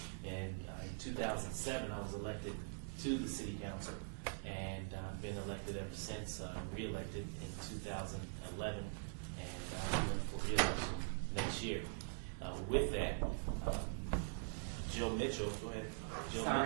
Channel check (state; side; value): silent; left; digital silence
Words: And in 2007, I was elected to the city council, and I've been elected ever since, re-elected in 2011, and I'm running for re-election next year. With that, Joe Mitchell, go ahead. Joe